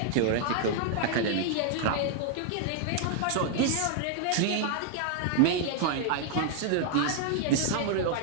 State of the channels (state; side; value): different; both; correlation 0.00